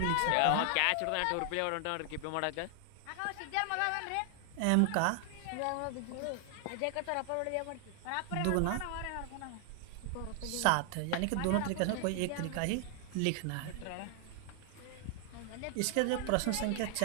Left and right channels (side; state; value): both; different; correlation 0.00